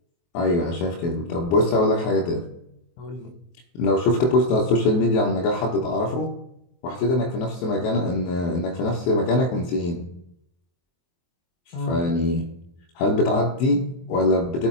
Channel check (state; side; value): late; right; 23 ms